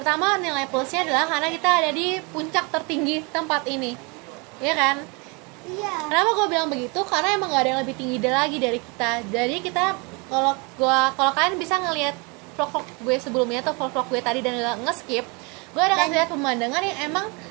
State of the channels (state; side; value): quieter; left; 30.2 dB